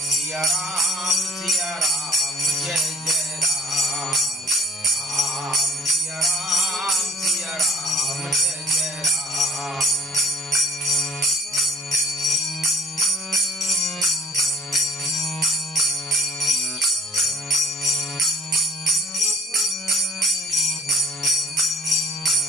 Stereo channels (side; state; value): both; normal; correlation 0.56